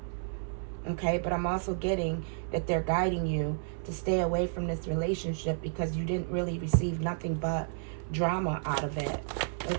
Okay, but I'm also getting that they're guiding you to stay away from this relationship because you didn't really receive nothing but drama out of it.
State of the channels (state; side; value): silent; left; 57 dB below the other